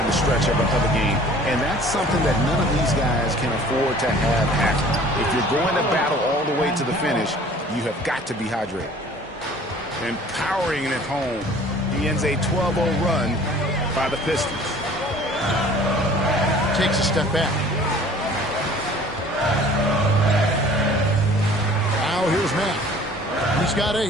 the stretch of a game. And that's something that none of these guys can afford to have happen. If you're going to battle all the way to the finish, you have got to be hydrated. And powering it home, he ends a 12-0 run by the Pistons. Takes a step back. Now here's Matt. He's got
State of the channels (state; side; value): normal; both; correlation 0.50